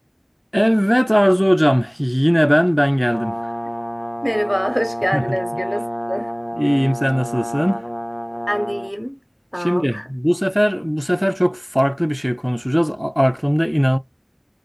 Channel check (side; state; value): both; identical; correlation 1.00